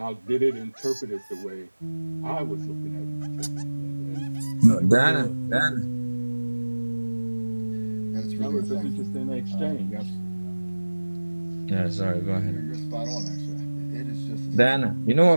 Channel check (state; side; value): inverted; both; correlation -1.00